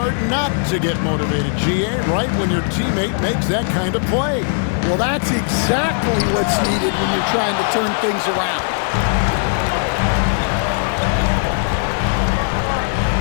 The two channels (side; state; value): right; silent; digital silence